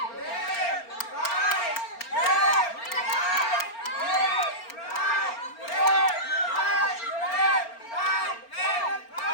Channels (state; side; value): late; right; 4.4 ms